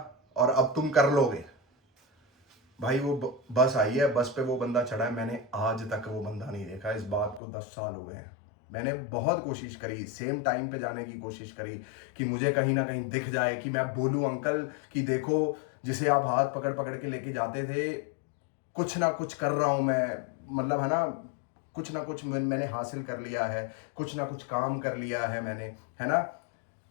और अब तुम कर लोगे। भाई वो बस आई है, बस पे वो बंदा चढ़ा है। मैंने आज तक वो बंदा नहीं देखा। इस बात को 10 साल हो गए हैं। मैंने बहुत कोशिश करी, सेम टाइम पे जाने की कोशिश करी कि मुझे कहीं ना कहीं दिख जाए, कि मैं बोलूं अंकल कि देखो जिसे आप हाथ पकड़ पकड़ के लेके जाते थे, कुछ ना कुछ कर रहा हूं मैं, मतलब है ना, कुछ ना कुछ मैंने हासिल कर लिया है, कुछ ना कुछ काम कर लिया है मैंने, है ना।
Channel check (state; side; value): drops out; right; at 7.4 s